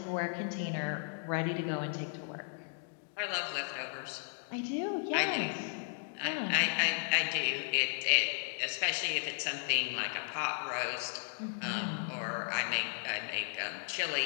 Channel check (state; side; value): silent; right; 54 dB below the other